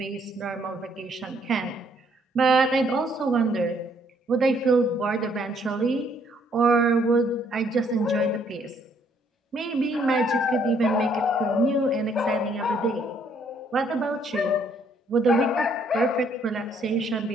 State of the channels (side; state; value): both; normal; correlation 0.67